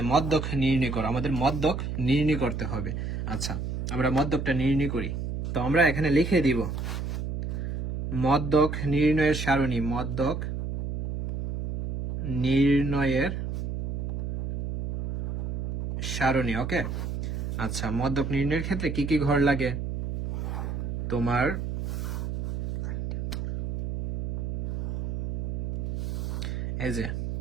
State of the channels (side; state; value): right; noise; hum, 3 dB below the sound